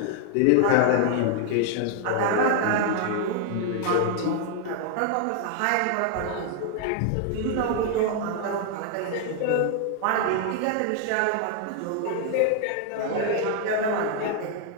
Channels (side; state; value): both; different; correlation 0.00